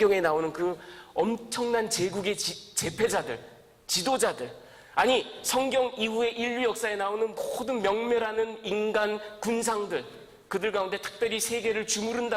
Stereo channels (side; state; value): both; identical; correlation 1.00